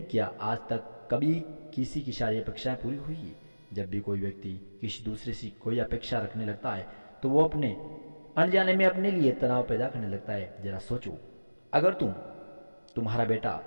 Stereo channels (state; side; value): inverted; both; correlation -1.00